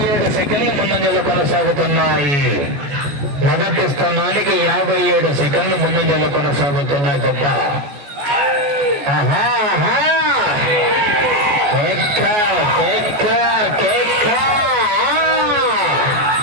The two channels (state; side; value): late; left; 14 ms